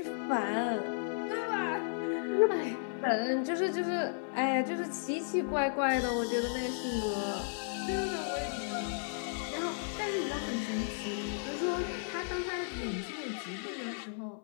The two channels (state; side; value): silent; right; 55 dB below the other